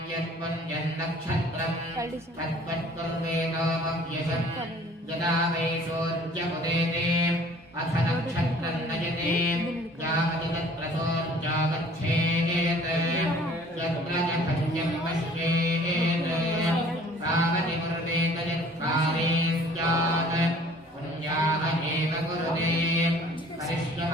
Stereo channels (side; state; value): both; normal; correlation 0.52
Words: यत्पुण्यन्नक्षत्रं तत्त्वत्कुर्वेदोपव्यशम् यदा वै सोऽर्जमुदेते अथ नक्षत्रं नयते यावति तत्र सोऽर्जागच्छेत् यत्र च भज्यं पश्येत् तावति कुरुतेत यत्काले स्यात् पुण्याः एव कुरुते।